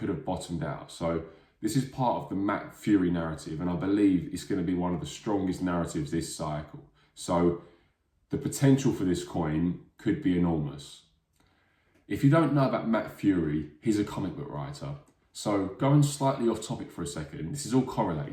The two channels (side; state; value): both; identical; correlation 1.00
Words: have bottomed out. So this is part of the Matt Fury narrative, and I believe it's going to be one of the strongest narratives this cycle. So the potential for this coin could be enormous. If you don't know about Matt Fury, he's a comic book writer. So going slightly off topic for a second, this is all